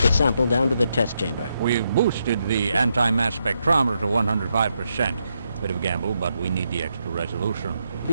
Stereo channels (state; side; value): inverted; both; correlation -0.81